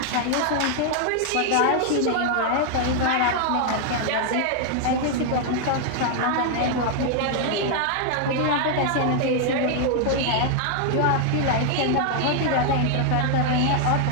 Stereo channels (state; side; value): different; both; correlation 0.00